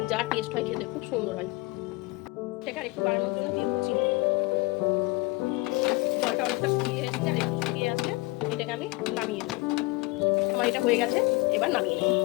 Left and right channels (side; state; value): right; quieter; 23.7 dB